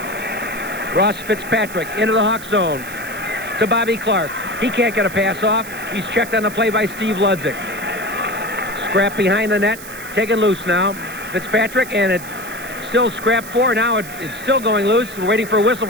Ross Fitzpatrick into the Hawk zone to Bobby Clark. He can't get a pass off. He's checked on the play by Steve Ludzik. Scrap behind the net, taken loose now. Fitzpatrick, and it's still scrap 4. Now it's still going loose. We're waiting for a whistle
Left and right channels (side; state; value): right; noise; hiss, 14 dB below the sound